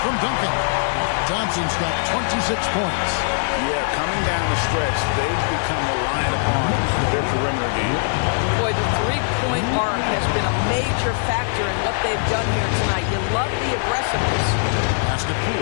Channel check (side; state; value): right; silent; digital silence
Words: Duncan. Thompson's got 26 points. Yeah, coming down the stretch, they've become reliant upon their perimeter game. Boy, the three-point arc has been a major factor in what they've done here tonight. You love the aggressiveness. Pass to